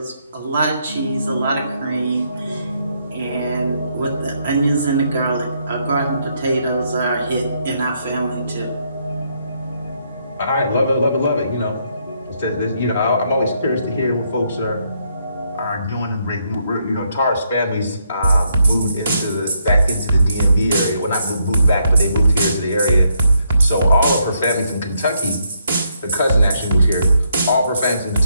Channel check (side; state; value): both; inverted; correlation -0.75